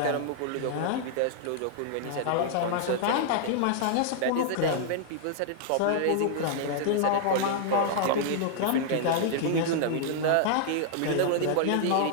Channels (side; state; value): both; different; correlation -0.01